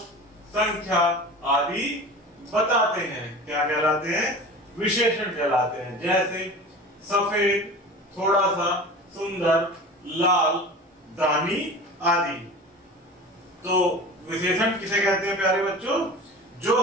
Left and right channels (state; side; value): normal; both; correlation 0.35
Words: संख्या आदि बताते हैं। क्या कहलाते हैं? विशेषण कहलाते हैं। जैसे सफेद, थोड़ा सा, सुंदर, लाल, दानी आदि। तो विशेषण किसे कहते हैं प्यारे बच्चों? जो